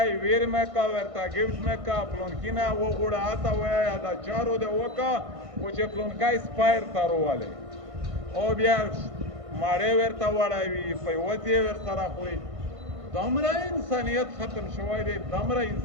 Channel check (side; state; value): left; late; 1.5 ms